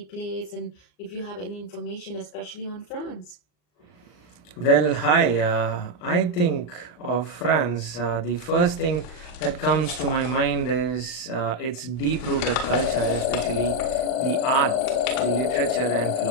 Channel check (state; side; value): late; right; 39 ms